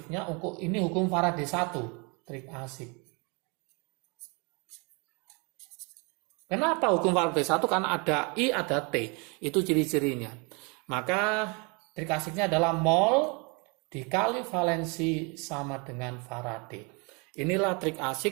ini hukum Faraday 1. Trik asik. Kenapa hukum Faraday 1? Karena ada I, ada T. Itu ciri-cirinya. Maka trik asiknya adalah mol dikali valensi sama dengan Faraday. Inilah trik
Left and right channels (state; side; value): quieter; left; 31.4 dB